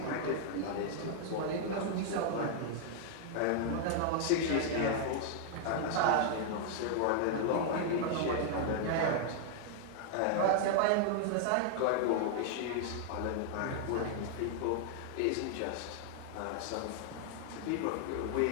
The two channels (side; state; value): both; different; correlation 0.00